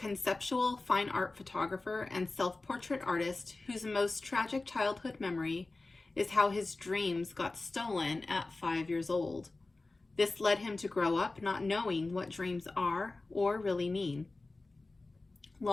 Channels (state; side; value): quieter; right; 3.3 dB